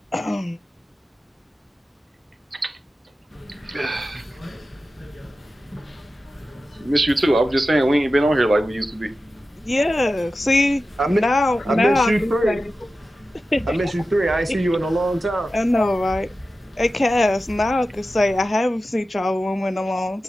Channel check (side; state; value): both; normal; correlation 0.94